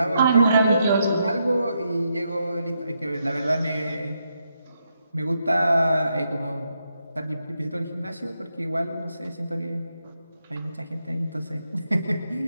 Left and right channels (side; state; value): both; inverted; correlation -0.81